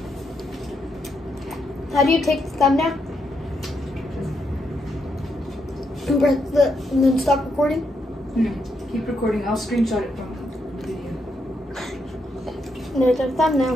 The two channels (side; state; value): both; normal; correlation 0.80